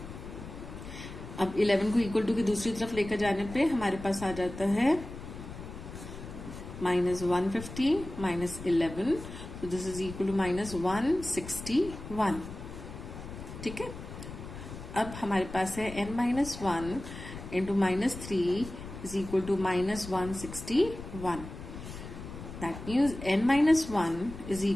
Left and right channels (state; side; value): noise; left; rumble, 11 dB below the sound